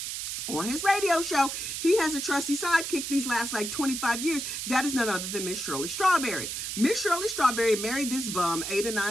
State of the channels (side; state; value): right; noise; hiss, 4 dB below the sound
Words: On his radio show, he has a trusty sidekick these last 25 years. That is none other than Miss Shirley Strawberry. Miss Shirley Strawberry married this bum 8 or